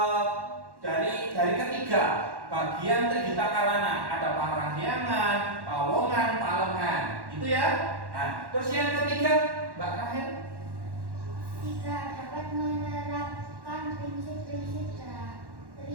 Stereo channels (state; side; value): late; left; 1.1 ms